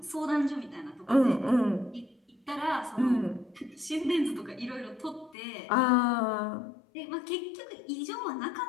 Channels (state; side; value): drops out; right; at 5.4 s